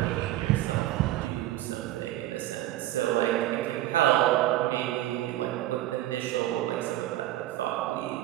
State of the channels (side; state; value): left; quieter; 14.7 dB